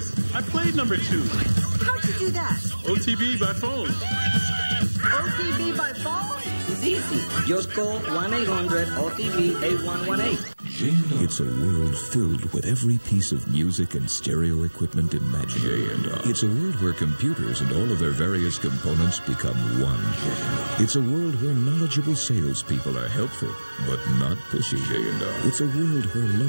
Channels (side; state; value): both; inverted; correlation -1.00